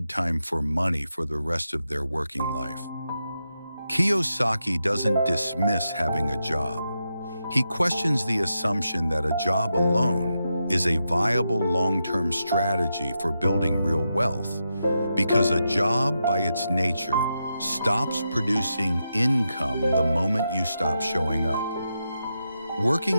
time for money for the rest of their working life. Kiyosaki doesn't dismiss having a job. He questions the assumption that a job alone is a viable long-term strategy for building real wealth, because a job, by its nature, stops producing income the moment you stop showing up.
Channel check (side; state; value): both; inverted; correlation -0.86